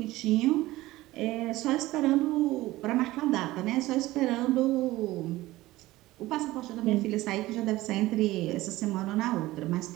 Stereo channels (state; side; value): quieter; left; 17.7 dB